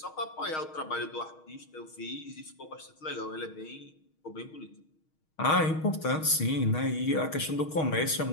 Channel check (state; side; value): late; right; 6.4 ms